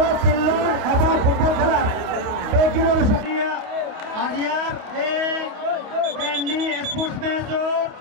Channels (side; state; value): left; late; 28 ms